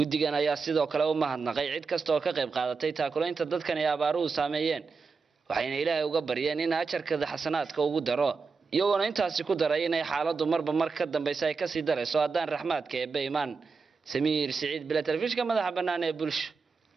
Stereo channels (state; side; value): quieter; left; 4.9 dB